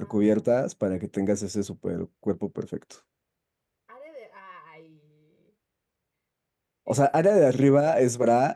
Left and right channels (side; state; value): both; identical; correlation 1.00